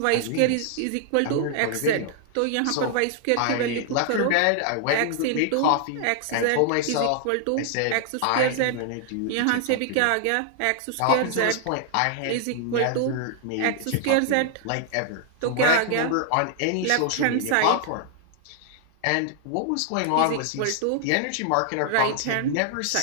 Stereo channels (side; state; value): both; different; correlation 0.00